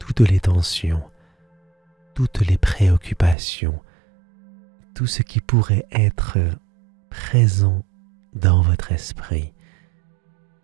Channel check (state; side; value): drops out; left; at 3.4 s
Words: les tensions, toutes les préoccupations, tout ce qui pourrait être présent dans votre esprit.